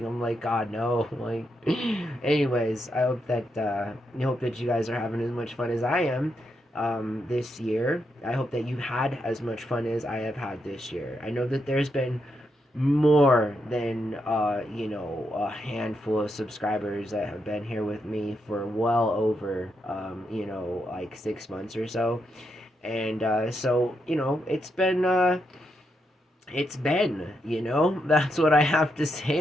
I'm like, God, no. Like, anyways, I hope that you guys are having as much fun as I am this year. I hope that you had as much fun as I have had this year. I know that there's been more than a handful of subscribers that have been here with me for well over like 6 months or so. And so it's been that's what I have to say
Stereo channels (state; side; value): normal; both; correlation 0.82